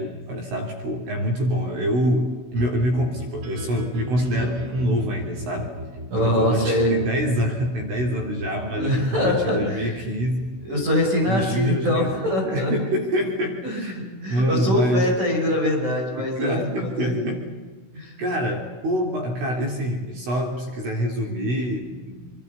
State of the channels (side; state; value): left; late; 16 ms